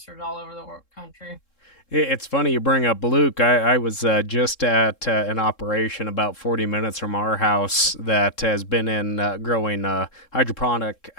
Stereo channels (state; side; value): late; right; 3.7 ms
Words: all over the country. It's funny you bring up Luke. I was just at an operation about 40 minutes from our house that has been in growing hydroponic